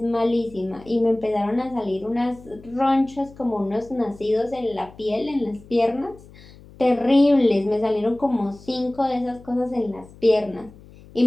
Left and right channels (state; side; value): noise; left; hum, 22 dB below the sound